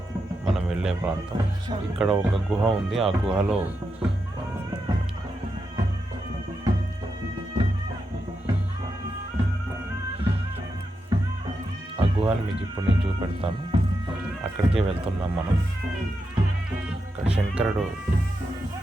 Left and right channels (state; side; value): normal; both; correlation 0.86